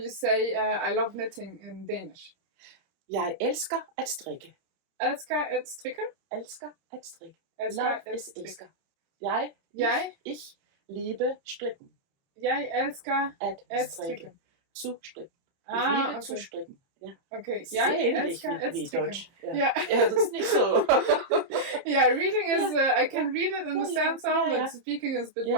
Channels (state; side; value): late; left; 30 ms